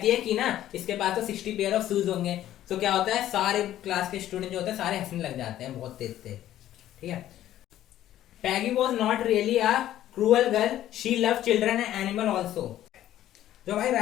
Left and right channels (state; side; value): quieter; right; 12.8 dB